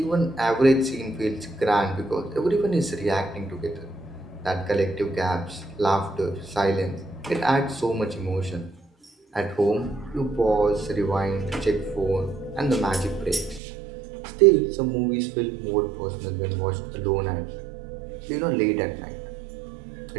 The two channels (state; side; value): drops out; left; at 13.6 s